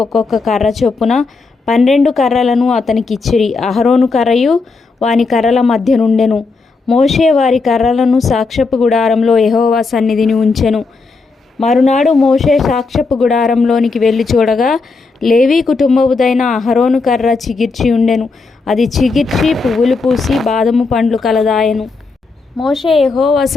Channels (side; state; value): right; quieter; 4.1 dB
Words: ఒక్కొక్క కర్ర చొప్పున 12 కర్రలను అతనికిచ్చిరి. అహరోను కర్రయు వాని కర్రల మధ్య నుండెను. మోషే వారి కర్రలను సాక్ష్యపు గుడారంలో యెహోవా సన్నిధిని ఉంచెను. మరునాడు మోషే సాక్ష్యపు గుడారంలోనికి వెళ్ళి చూడగా, లేవీ కుటుంబముదైన అహరోను కర్ర చిగిర్చి ఉండెను. అది చిగిర్చి పువ్వులు పూసి బాదము పండ్లు కలదాయెను. మోషే యెహోవా